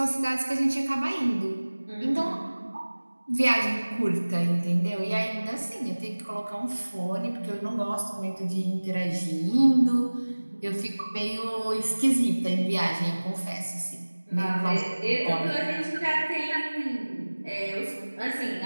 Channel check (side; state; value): both; inverted; correlation -1.00